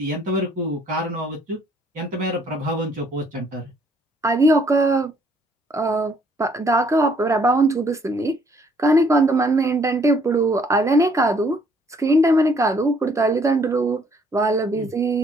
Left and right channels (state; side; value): normal; both; correlation 0.64